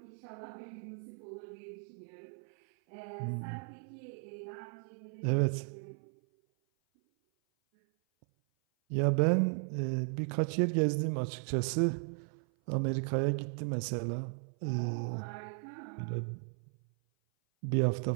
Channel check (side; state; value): left; silent; 54 dB below the other